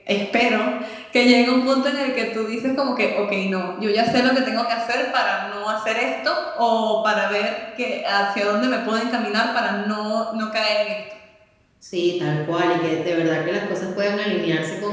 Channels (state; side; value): identical; both; correlation 1.00